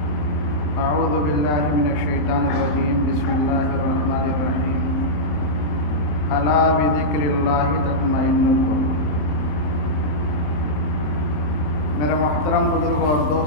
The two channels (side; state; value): right; late; 27 ms